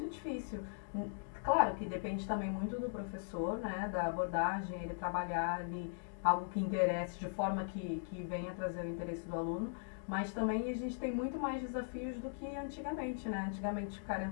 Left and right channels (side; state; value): right; silent; digital silence